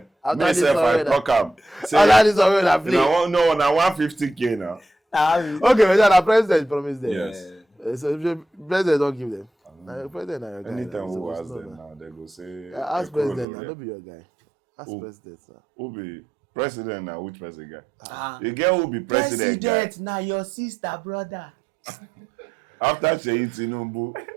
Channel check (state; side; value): drops out; left; at 13.5 s